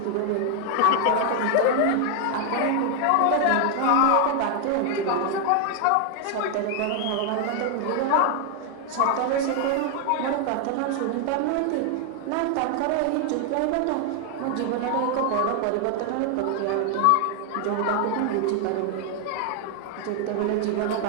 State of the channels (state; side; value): different; both; correlation 0.00